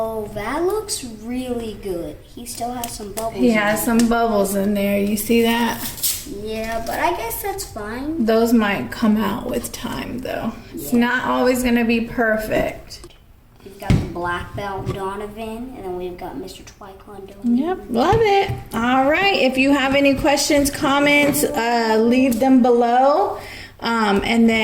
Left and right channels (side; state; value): both; identical; correlation 1.00